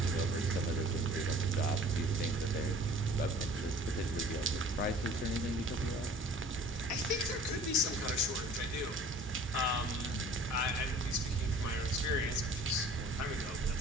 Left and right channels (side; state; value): both; normal; correlation 0.48